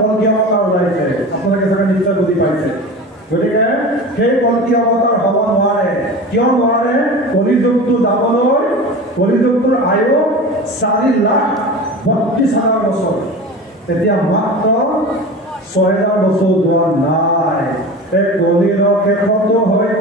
অৱতাৰ ওলাইছে। আপোনালোকে চাগে নিশ্চয় বুজি পাইছে। গতিকে সেই কল্কি অৱতাৰ হ'ব নোৱাৰে। কিয় নোৱাৰে? কলিযুগটো যাবলৈ কলিযুগটোৰ আয়ু 4,32,000 বছৰ। এতিয়া মাত্ৰ 6,000 বছৰ যোৱা নাই। এই কলিৰ শেষতো হৈ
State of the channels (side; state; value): both; normal; correlation 0.32